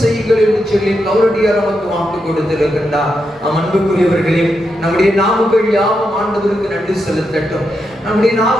செய்யுங்கள் என்று சொல்லி கௌரடியார் நமக்கு வாக்கு கொடுத்திருக்கின்றார். அன்புக்குரியவர்களே, நம்முடைய நாவுகள் யாவும் ஆண்டவருக்கு நன்றி செலுத்தட்டும். நம்முடைய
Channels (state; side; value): normal; both; correlation 0.84